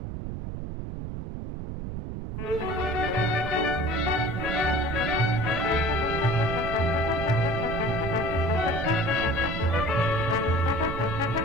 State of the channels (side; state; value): right; noise; rumble, 6 dB below the sound